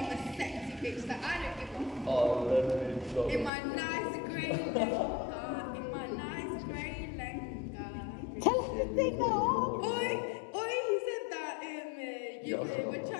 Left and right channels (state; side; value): drops out; right; at 3.5 s